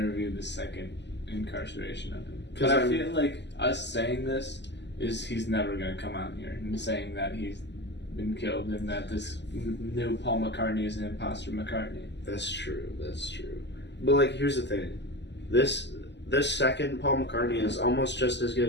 the second incarceration of him. Because I feel like us saying this is he's never going to come out here and saying that he's been killed and that this new Paul McCartney is an imposter McCartney. That's true. But like, here's the thing. This second Paul McCartney is almost just as good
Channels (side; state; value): right; late; 0.51 ms